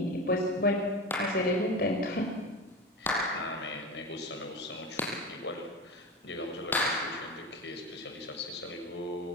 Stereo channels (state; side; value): normal; both; correlation 0.25